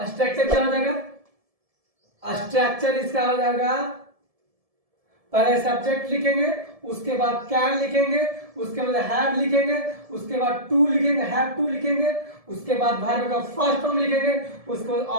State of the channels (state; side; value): late; left; 1.7 ms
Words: स्ट्रक्चर क्या हो जाएगा? स्ट्रक्चर इसका हो जाएगा, पहले सब्जेक्ट लिखेंगे, उसके बाद कैन लिखेंगे, उसके बाद हैव लिखेंगे, उसके बाद टू लिखेंगे, हैव टू लिखेंगे, उसके बाद वर्ब का फर्स्ट फॉर्म लिखेंगे, उसके बाद